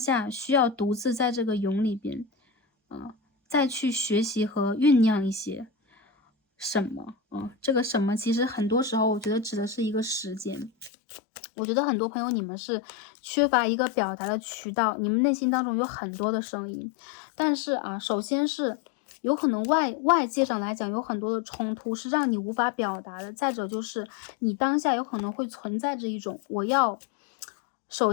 需要独自在这个蛹里边，再去学习和酝酿一些什么，这个什么其实很多时候我觉得指的是一个时间。我觉得很多朋友你们是缺乏一个表达的渠道，你们内心当中有很多的声音，但是啊，首先是有可能外界上来讲有很多的冲突是让你无法表达的，再者就是你当下有可能会存在着一种我要首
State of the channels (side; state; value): right; drops out; at 10.9 s